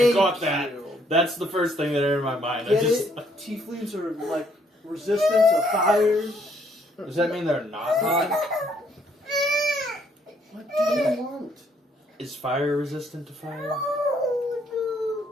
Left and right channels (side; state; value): both; normal; correlation 0.68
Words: got that. you. That's the first thing that entered my mind. I Get just. it? Tieflings are like resistant to fire. Does that mean they're not hot? What do you want? Is fire resistant to fire?